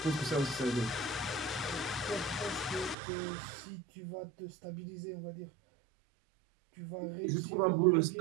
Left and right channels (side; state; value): left; drops out; at 3.0 s